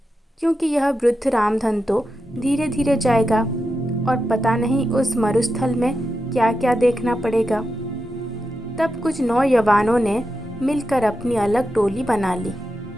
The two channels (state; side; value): normal; both; correlation 0.88